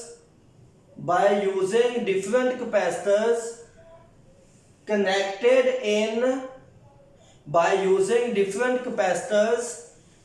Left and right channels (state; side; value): identical; both; correlation 1.00